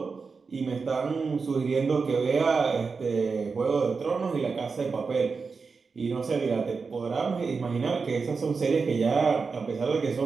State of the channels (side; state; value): left; quieter; 4.8 dB